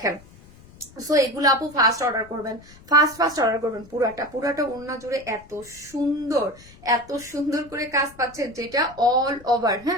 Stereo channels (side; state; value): left; noise; rumble, 23 dB below the sound